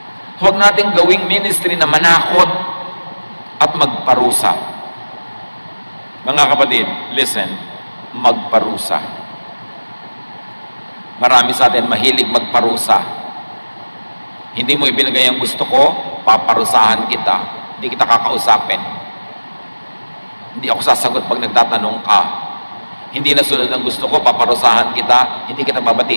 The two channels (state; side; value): inverted; both; correlation -1.00